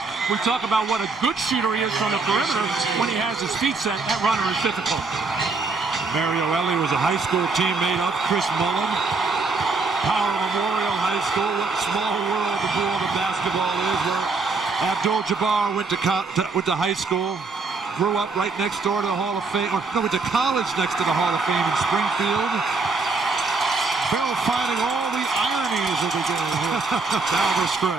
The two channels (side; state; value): left; quieter; 4.1 dB